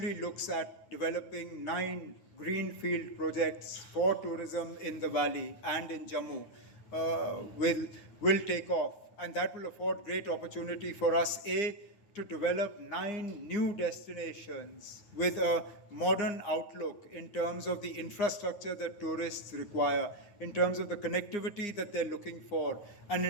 looks at developing 9 greenfield projects for tourism in the valley and in Jammu, will take off. And that will afford great opportunity for us, A, to develop 9 new destinations with a modern outlook in terms of the infrastructure that tourists require, in terms of the connectivity that they're looking for, and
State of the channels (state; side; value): late; right; 9.3 ms